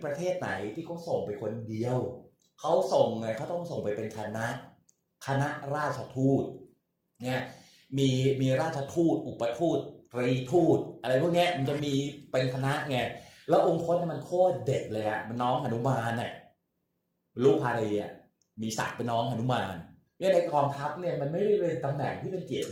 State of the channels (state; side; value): identical; both; correlation 1.00